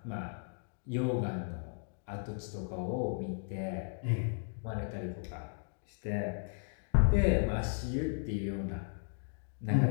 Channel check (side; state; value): right; silent; digital silence